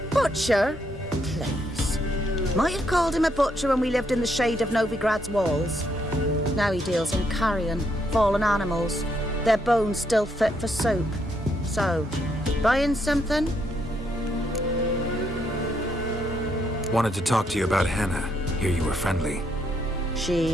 Butcher? Please. Might have called him a butcher when we lived in the shade of Novigrad's walls. Now he deals in carrion, fallen animals, their bones still fit for soup. So, buying something? Wanted to talk to you about Hannah. Hear you were friendly.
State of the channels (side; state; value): both; normal; correlation 0.75